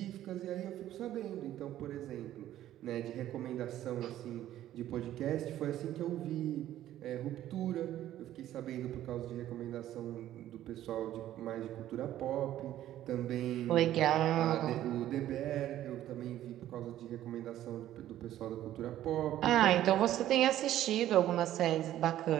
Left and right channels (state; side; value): quieter; left; 12.9 dB